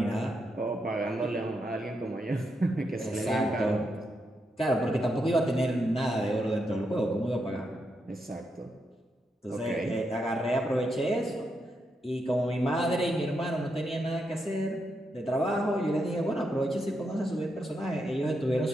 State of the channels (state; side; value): normal; both; correlation 0.83